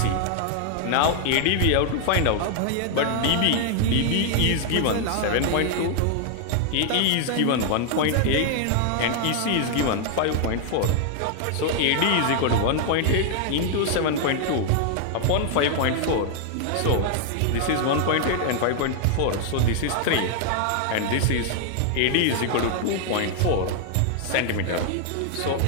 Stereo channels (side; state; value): both; different; correlation 0.00